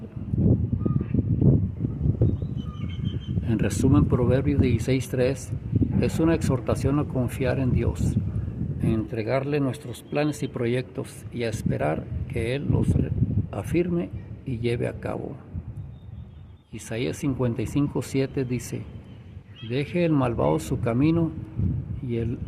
En resumen, Proverbios 16:3 es una exhortación a confiar en Dios, a entregarle nuestros planes y proyectos y a esperar que Él los afirme y lleve a cabo. Isaías 55:7 dice: deje el malvado su camino y el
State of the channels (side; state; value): both; identical; correlation 1.00